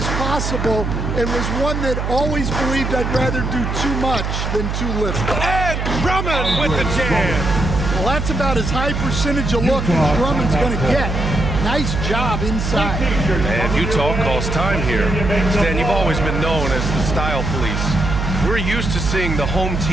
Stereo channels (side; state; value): right; noise; hum, 2 dB below the sound